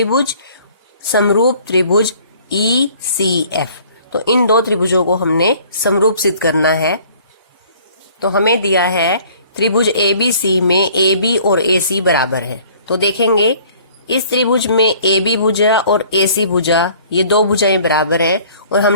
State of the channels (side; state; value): both; inverted; correlation -0.55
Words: समरूप त्रिभुज ई सी एफ। तो इन दो त्रिभुजों को हमने समरूप सिद्ध करना है। तो हमें दिया है त्रिभुज ए बी सी में ए बी और ए सी बराबर है। तो देखेंगे इस त्रिभुज में ए बी भुजा और ए सी भुजा ये दो भुजाएं बराबर हैं और